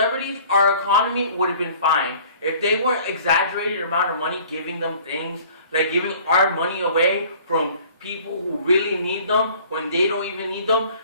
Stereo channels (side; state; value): both; inverted; correlation -0.51